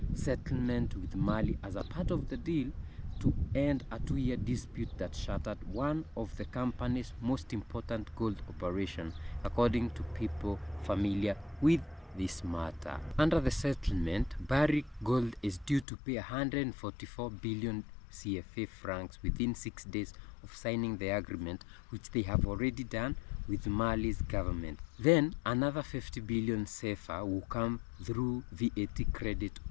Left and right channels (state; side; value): drops out; right; at 15.9 s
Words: settlement with Mali as a part of the deal to end a 2-year dispute that shattered one of the company's most important gold operations, according to people familiar with this matter. Under the settlement, Barrick Gold is due to pay 144 billion CFA francs within 6 days of signing the agreement, which they have already done with Mali's government. Then another 50 billion CFA will come through VAT credit